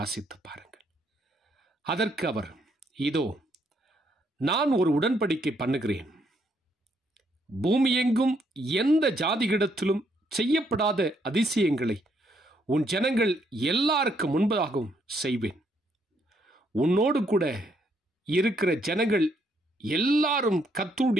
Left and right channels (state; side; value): normal; both; correlation 0.72